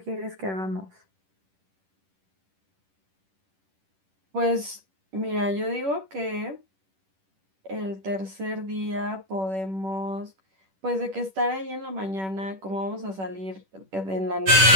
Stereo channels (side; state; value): left; late; 10 ms